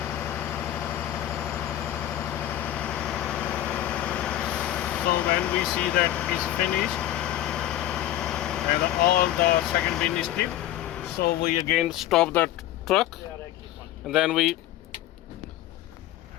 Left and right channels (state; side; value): quieter; right; 13.4 dB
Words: We see that is finished and all the second bin is tipped, so we again stop the truck and then we